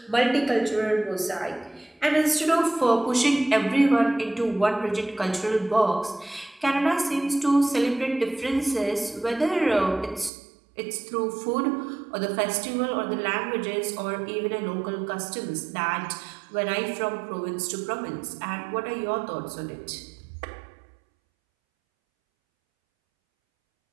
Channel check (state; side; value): drops out; left; at 10.3 s